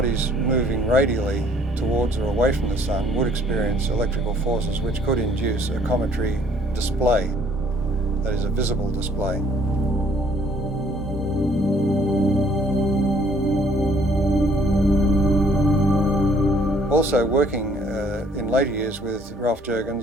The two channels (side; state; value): both; normal; correlation 0.60